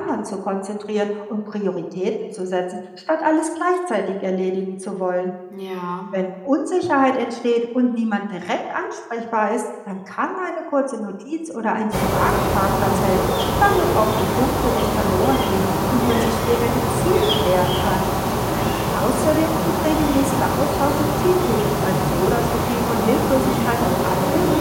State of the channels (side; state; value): both; identical; correlation 1.00